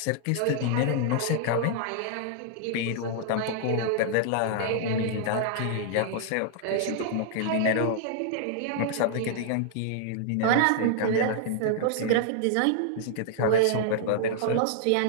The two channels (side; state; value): both; different; correlation -0.01